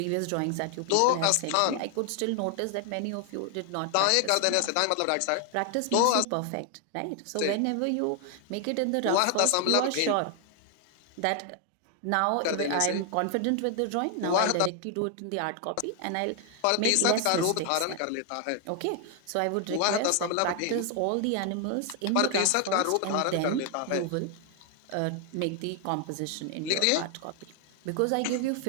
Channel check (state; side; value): different; both; correlation 0.00